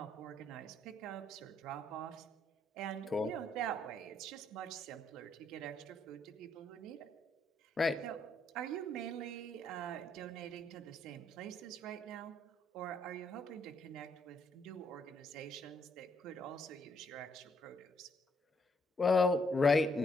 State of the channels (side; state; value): both; normal; correlation 0.72